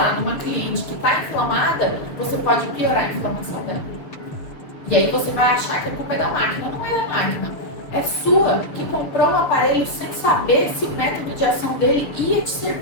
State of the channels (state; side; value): late; right; 6.7 ms